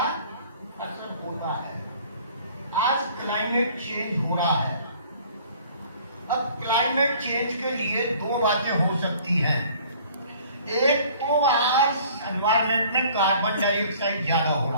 असर होता है। आज क्लाइमेट चेंज हो रहा है। अब क्लाइमेट चेंज के लिए 2 बातें हो सकती हैं। एक तो आज एनवायरमेंट में कार्बन डाइऑक्साइड ज्यादा हो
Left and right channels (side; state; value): both; inverted; correlation -0.53